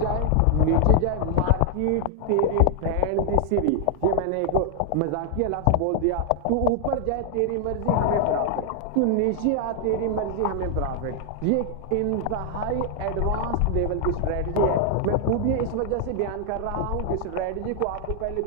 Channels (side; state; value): both; different; correlation 0.00